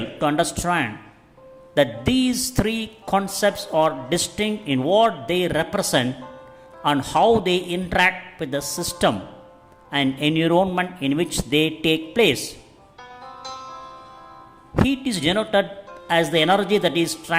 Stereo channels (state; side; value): identical; both; correlation 1.00